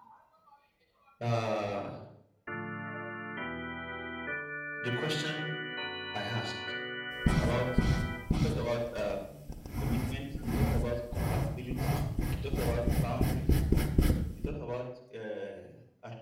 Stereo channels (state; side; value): identical; both; correlation 1.00